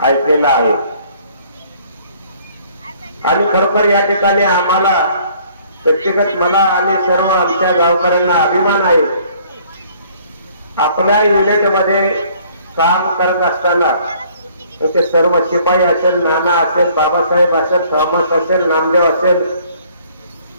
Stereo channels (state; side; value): inverted; both; correlation -0.59